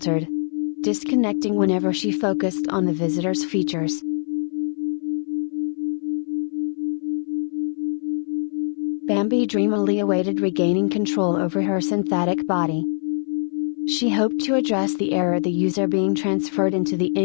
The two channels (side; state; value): right; silent; 60 dB below the other